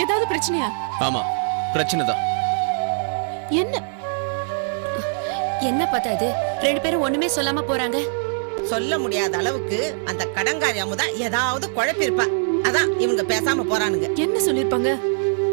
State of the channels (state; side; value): silent; left; 64 dB below the other